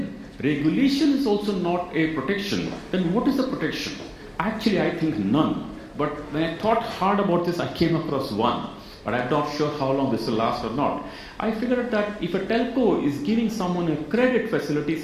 regulation is also not a protection, then what is the protection? Actually, I think none. But when I thought hard about this, I came across one. But I'm not sure how long this will last or not. I figured out that if a telco is giving someone a credit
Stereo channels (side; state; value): both; identical; correlation 1.00